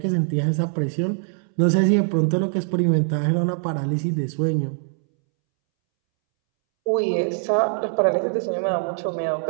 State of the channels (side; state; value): left; silent; 64 dB below the other